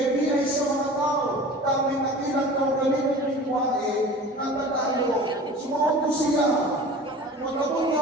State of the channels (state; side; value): normal; both; correlation 0.40